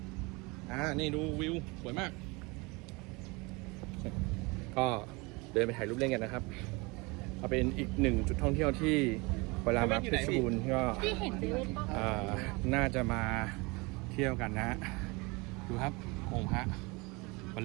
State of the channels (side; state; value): left; quieter; 26.3 dB